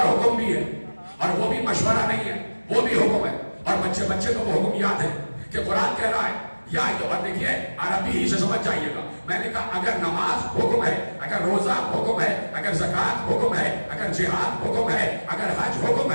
حکم بھی ہے، اور وہ بھی مشورہ نہیں ہے، وہ بھی حکم ہے۔ اور بچے کو وہ حکم یاد ہے کہ قرآن کہہ رہا ہے یا دیکھیے عربی ہی سے سمجھ جائیے گا، میں نے کہا اگر نماز حکم ہے، اگر روزہ حکم ہے، اگر زکوٰۃ حکم ہے، اگر جہاد حکم ہے، اگر حج حکم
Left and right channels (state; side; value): inverted; both; correlation -1.00